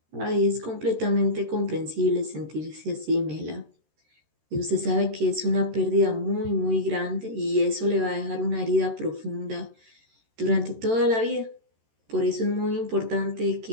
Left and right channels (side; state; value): left; late; 13 ms